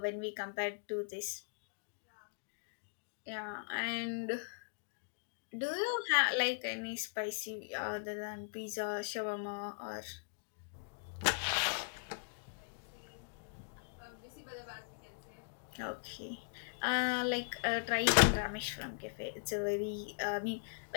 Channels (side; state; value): right; silent; digital silence